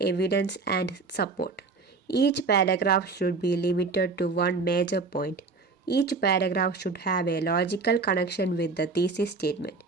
and support. Each paragraph should be limited to one major point. Each paragraph should have a logical connection with the thesis statement.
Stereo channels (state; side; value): quieter; left; 4.3 dB